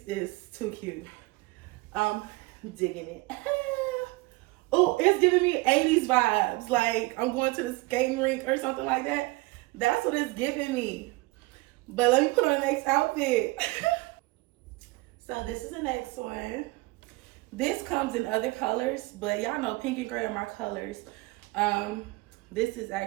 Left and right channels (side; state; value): left; quieter; 23.0 dB